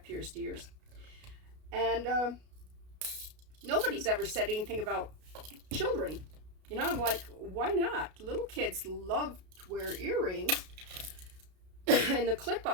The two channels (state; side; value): late; left; 33 ms